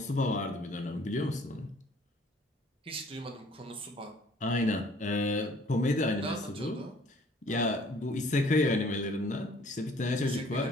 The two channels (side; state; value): both; normal; correlation 0.56